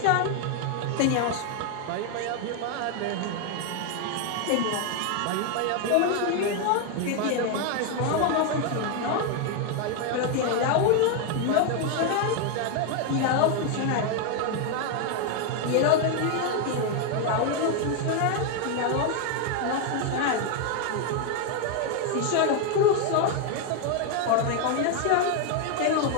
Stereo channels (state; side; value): different; both; correlation 0.01